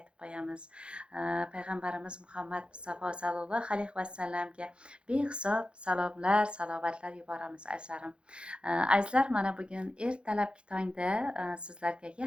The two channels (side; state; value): left; late; 0.056 ms